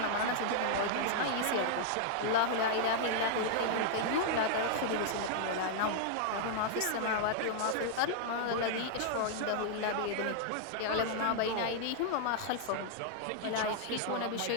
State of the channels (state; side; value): different; both; correlation -0.01